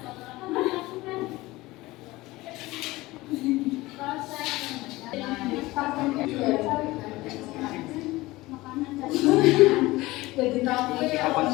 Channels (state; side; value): quieter; right; 19.6 dB